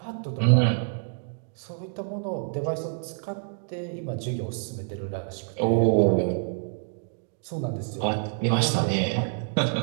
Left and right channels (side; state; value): left; silent; digital silence